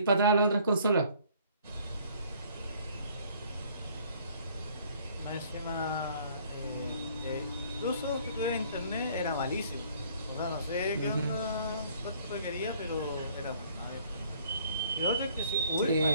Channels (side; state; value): both; inverted; correlation -0.58